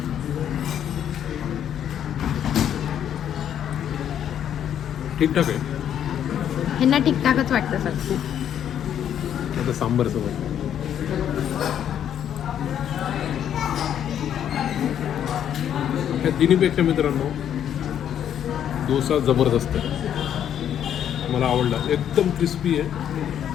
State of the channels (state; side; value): quieter; right; 9.7 dB